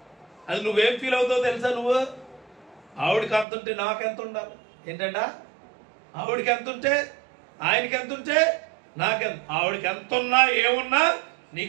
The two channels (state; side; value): drops out; left; at 3.5 s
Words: అది నువ్వేం ఫీల్ అవుతావో తెలుసా? నువ్వు ఆవిడకి ఎంత ఉంటే నాకెంత ఉండాలి ఏంటంట? ఆవిడకి ఎంత ఉంటే ఆయనకి ఎంత ఉంటే నాకెంత. ఆవిడకి ఎంత ఉన్నా ఏమున్నా